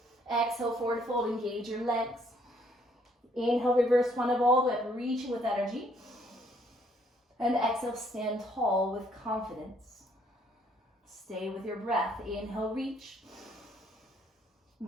Exhale, forward fold, engage your legs. Inhale, reverse one of all the way up, reaching with energy. And exhale, stand tall with confidence. Stay with your breath. Inhale, reach.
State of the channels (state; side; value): normal; both; correlation 0.66